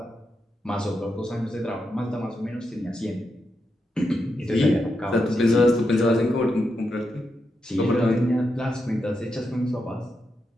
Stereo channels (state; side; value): normal; both; correlation 0.85